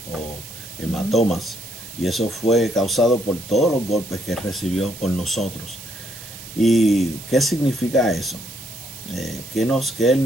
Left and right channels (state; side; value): noise; right; hiss, 15 dB below the sound